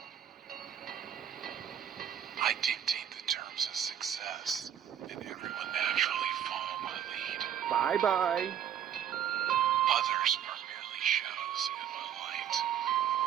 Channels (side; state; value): left; quieter; 9.6 dB